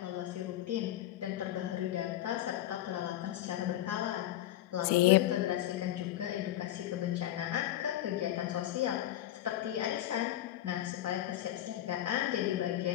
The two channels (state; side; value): quieter; right; 13.4 dB